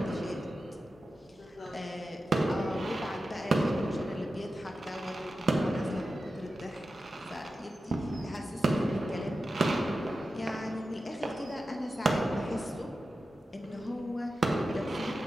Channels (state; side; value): normal; both; correlation 0.92